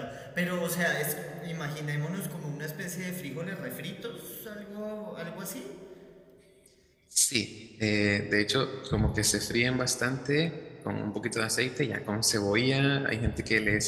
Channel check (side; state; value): both; identical; correlation 1.00